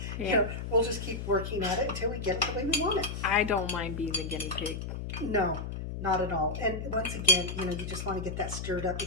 Yeah. You know, we'll just keep working at it until we get it the way we want it. I don't mind being the guinea pig. No, not at all. And once again, you know, you just want to get that stirred up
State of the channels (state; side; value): noise; left; hum, 6 dB below the sound